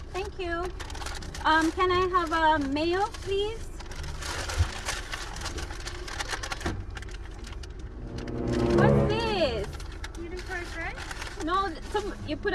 Thank you. Can I have a mayo, please? What's this? Medium fries, right? No, you put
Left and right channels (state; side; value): identical; both; correlation 1.00